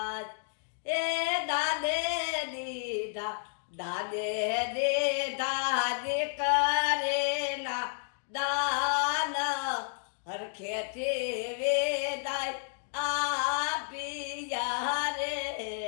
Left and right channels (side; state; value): right; silent; digital silence